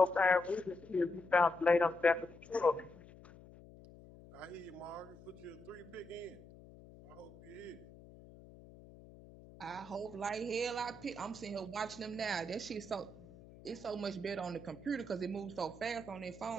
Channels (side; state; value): left; noise; hum, 19 dB below the sound